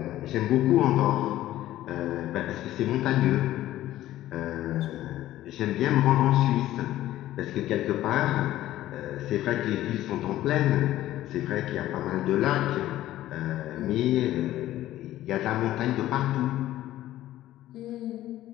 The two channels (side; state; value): right; quieter; 14.3 dB